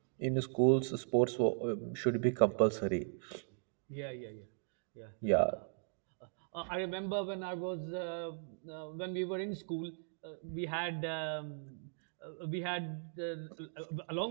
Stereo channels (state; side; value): silent; left; digital silence